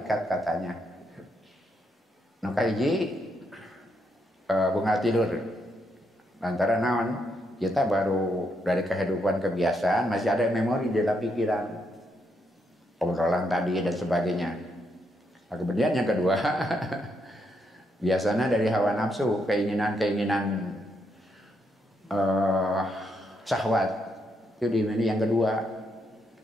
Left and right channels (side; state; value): both; normal; correlation 0.78